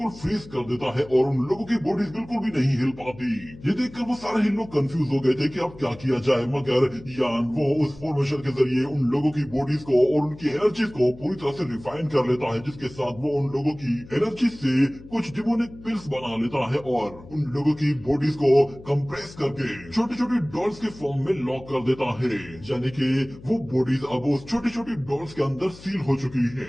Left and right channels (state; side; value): noise; left; hum, 19 dB below the sound